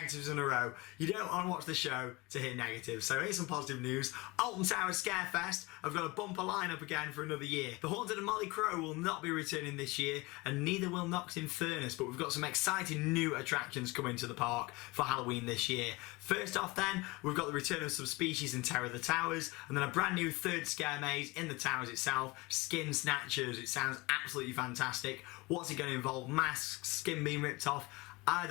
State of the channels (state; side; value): quieter; right; 23.7 dB